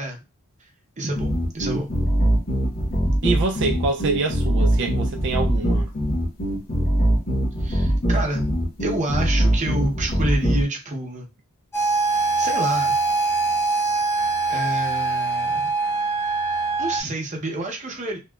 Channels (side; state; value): both; normal; correlation 0.71